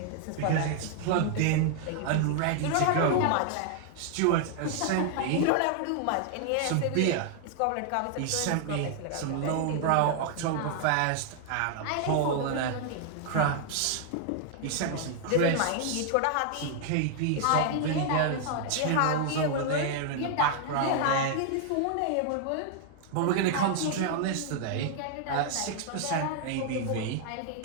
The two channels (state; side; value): different; both; correlation 0.00